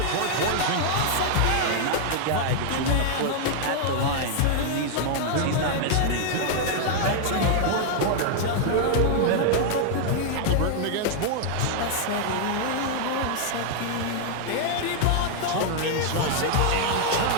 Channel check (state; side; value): different; both; correlation 0.00